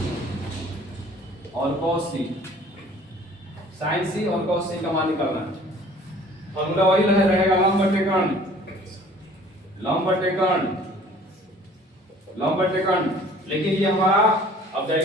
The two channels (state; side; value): normal; both; correlation 0.51